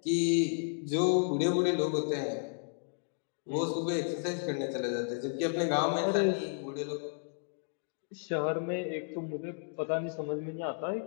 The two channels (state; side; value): silent; right; digital silence